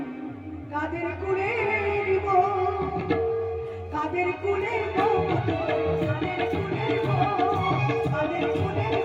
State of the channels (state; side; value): identical; both; correlation 1.00